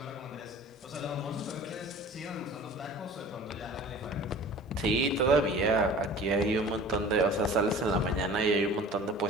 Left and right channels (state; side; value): normal; both; correlation 0.43